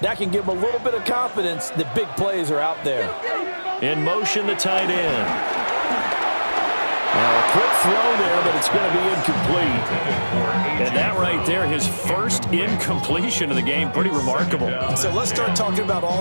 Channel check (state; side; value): inverted; both; correlation -1.00